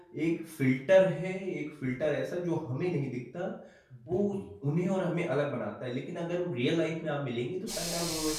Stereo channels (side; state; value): both; identical; correlation 1.00